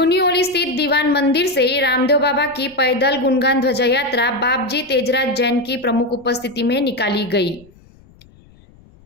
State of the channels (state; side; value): noise; left; rumble, 27 dB below the sound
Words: स्थित दीवान मंदिर से रामदेव बाबा की पैदल गुणगान ध्वजा यात्रा बापजी तेजराज जैन की प्रमुख उपस्थिति में निकाली गई।